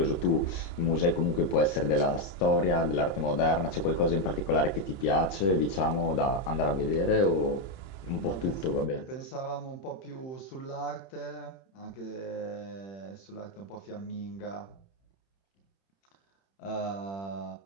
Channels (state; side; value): late; right; 31 ms